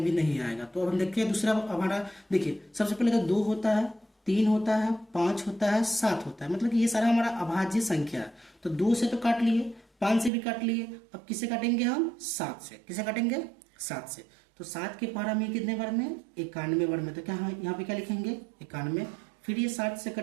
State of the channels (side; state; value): left; drops out; at 10.3 s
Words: भी नहीं आएगा। तो अब हम देखिए दूसरा हमारा, देखिए सबसे पहले तो 2 होता है, 3 होता है, 5 होता है, 7 होता है, मतलब कि ये सारा हमारा अभाज्य संख्या है। तो 2 से तो काट लिए, 5 से भी काट लिए, अब किसे काटेंगे हम 7 से। किसे काटेंगे 7 से। तो 7 के पहाड़ा में कितने बार में 91 बार में। तो क्या यहाँ पे क्या लिखेंगे 91, फिर ये 7 से